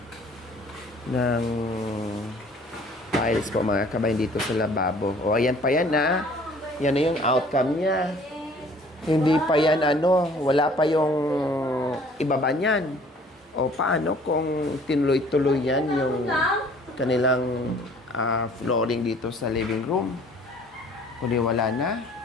ng tiles po mga kabayan dito sa lababo. O, ayan pa yan, ha? Yan na yung outcome niya. Hindi pa yan, wala pa yung ibaba niyan. O, paano kung tinuloy-tuloy yan yung kanilang flooring dito sa living room? O, di wala na?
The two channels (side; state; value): both; normal; correlation 0.54